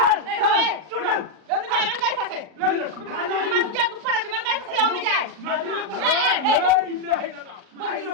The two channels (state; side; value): late; left; 39 ms